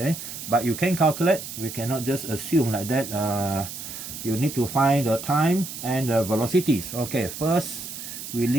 but you can calculate. We cannot just assume like that. You need to find the time and the velocities. Okay, first we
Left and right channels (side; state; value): right; noise; hiss, 9 dB below the sound